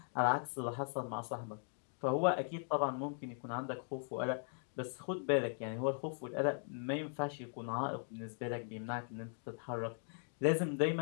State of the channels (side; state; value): right; silent; 52 dB below the other